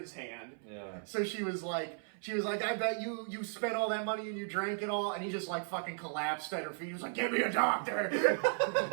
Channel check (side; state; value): left; silent; 54 dB below the other